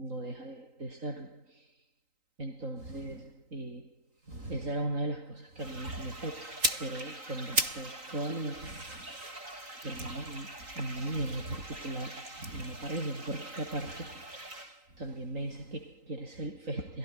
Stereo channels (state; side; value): late; left; 3.9 ms